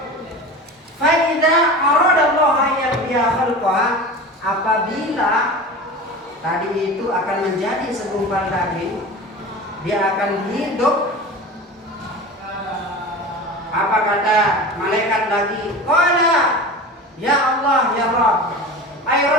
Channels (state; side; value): normal; both; correlation 0.33